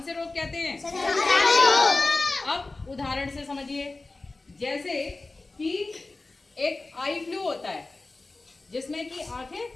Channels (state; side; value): quieter; right; 3.3 dB